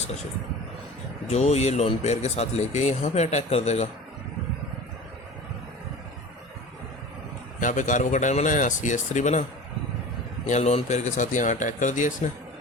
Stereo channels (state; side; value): normal; both; correlation 0.37